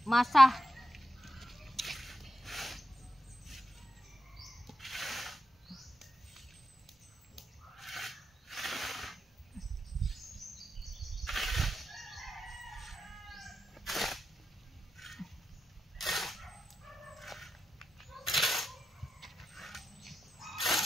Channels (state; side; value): normal; both; correlation 0.88